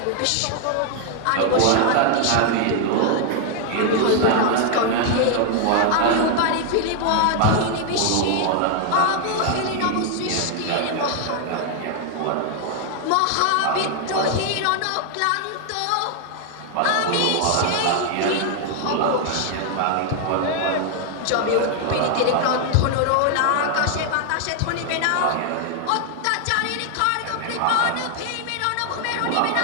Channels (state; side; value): different; both; correlation 0.00